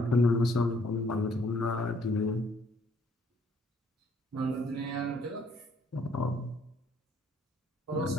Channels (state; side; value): normal; both; correlation 0.65